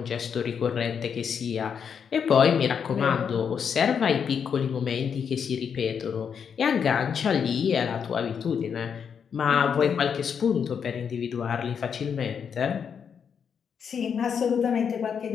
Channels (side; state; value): right; quieter; 7.1 dB